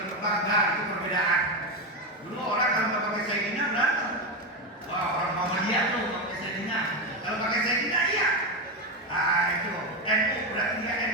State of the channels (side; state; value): both; normal; correlation 0.12